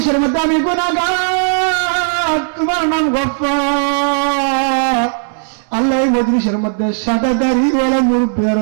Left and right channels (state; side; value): silent; left; digital silence